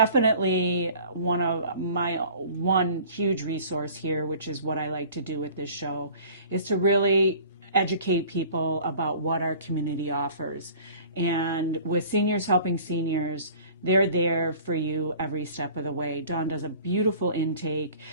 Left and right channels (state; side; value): inverted; both; correlation -0.47